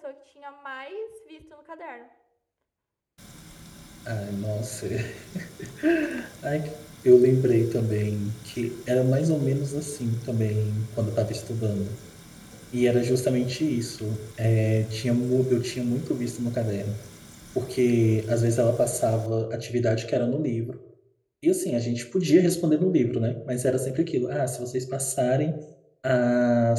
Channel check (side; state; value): both; identical; correlation 1.00